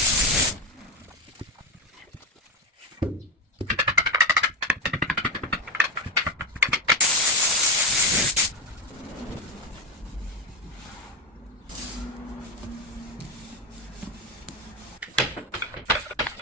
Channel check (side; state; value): both; normal; correlation 0.16